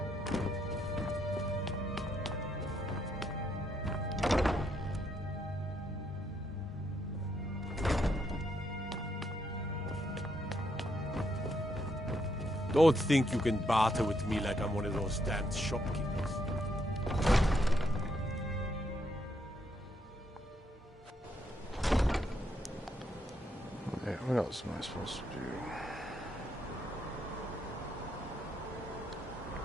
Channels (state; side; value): normal; both; correlation 0.76